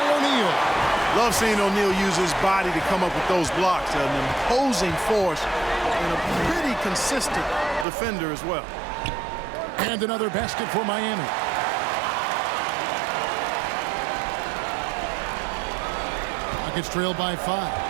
O'Neal. Love seeing O'Neal use his body to come up with those blocks. An imposing force and a pretty consistent defender as well. And another basket for Miami. Rockets trailed by 5.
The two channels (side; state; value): left; drops out; at 7.9 s